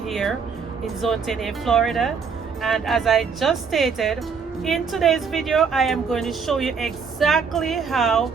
in Zone 10A, Florida. And as I just stated, in today's video, I am going to show you exactly how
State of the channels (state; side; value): quieter; left; 5.8 dB